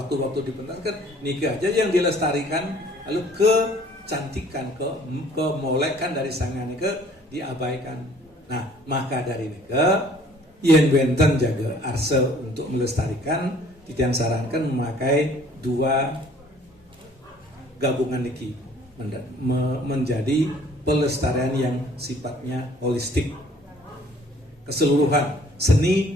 dipentaskan, niki aja yang dilestarikan, lalu kecantikan, kemolekan dari sangyang niki diabaikan. Nah, maka dari niki yen benten jaga arse untuk melestarikan, Titian sarankan memakai dua gabungan niki menjadi pelestarian yang sifatnya holistik, keseluruhan seni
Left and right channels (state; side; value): normal; both; correlation 0.56